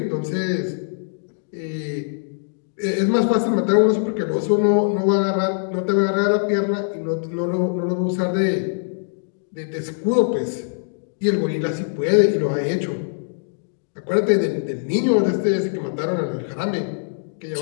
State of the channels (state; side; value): silent; right; digital silence